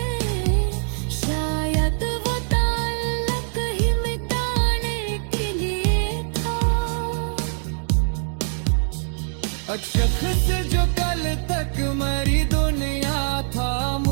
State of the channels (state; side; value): silent; left; digital silence